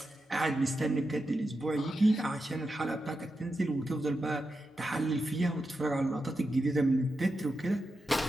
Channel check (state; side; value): normal; both; correlation 0.88